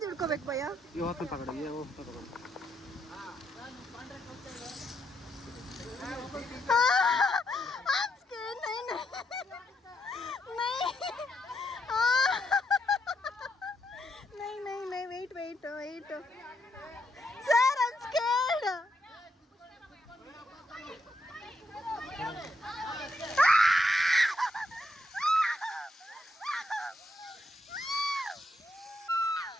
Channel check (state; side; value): normal; both; correlation 0.79